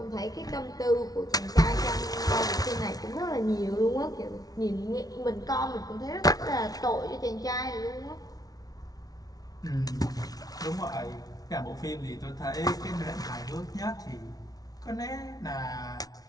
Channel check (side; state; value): right; late; 0.18 ms